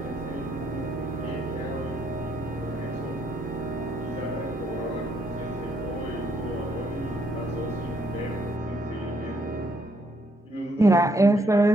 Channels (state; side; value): normal; both; correlation 0.71